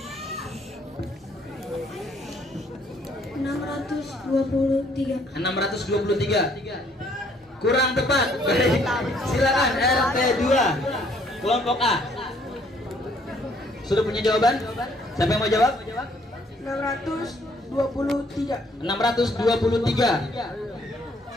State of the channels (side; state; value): both; normal; correlation 0.64